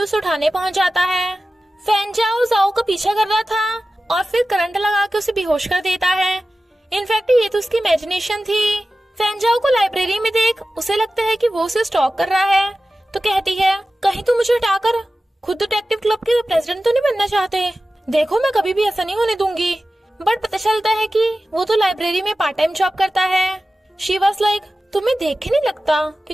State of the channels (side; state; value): both; normal; correlation 0.95